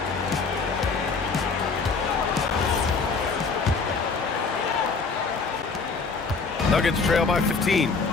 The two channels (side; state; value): right; quieter; 4.6 dB